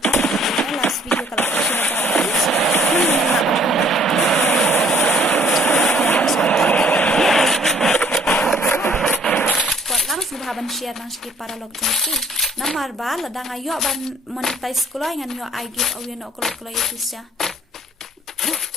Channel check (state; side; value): normal; both; correlation 0.60